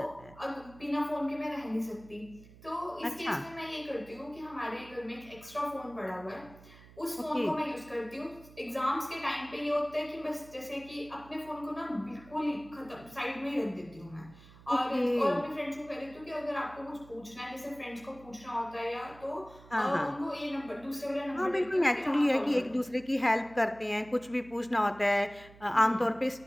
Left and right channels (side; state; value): right; noise; hum, 21 dB below the sound